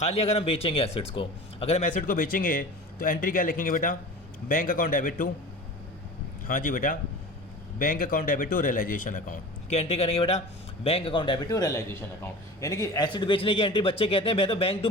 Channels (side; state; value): both; normal; correlation 0.36